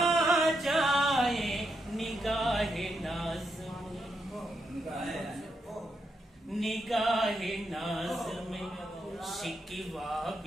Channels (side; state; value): both; normal; correlation 0.82